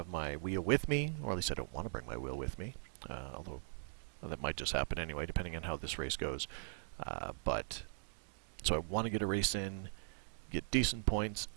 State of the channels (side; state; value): left; silent; digital silence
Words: my wheel with me, or at least I don't want to bring my wheel with me, although that might just happen anyway, depending on how this race goes. So I want to get a race in, get decent points,